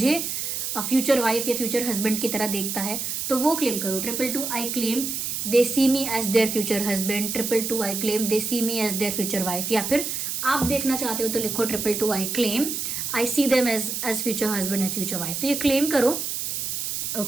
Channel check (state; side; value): noise; right; hiss, 3 dB below the sound